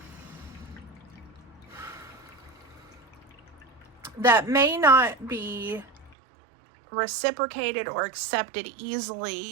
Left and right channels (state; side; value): drops out; left; at 6.2 s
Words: reciprocated or accepted